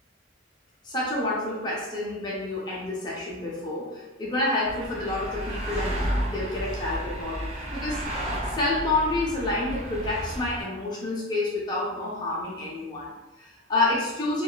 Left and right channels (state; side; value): normal; both; correlation 0.21